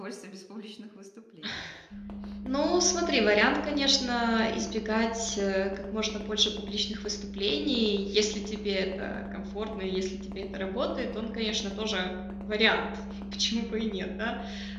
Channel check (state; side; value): identical; both; correlation 1.00